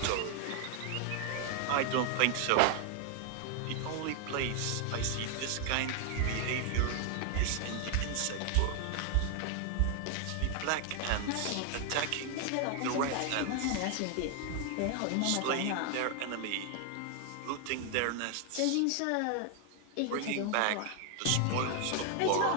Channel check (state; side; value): different; both; correlation 0.00